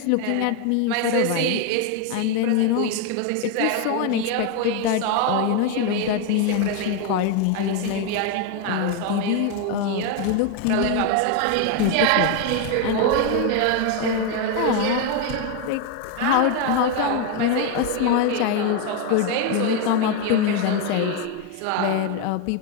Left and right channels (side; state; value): both; different; correlation 0.01